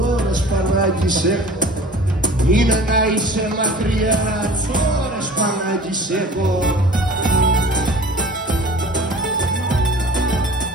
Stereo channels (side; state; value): both; normal; correlation 0.43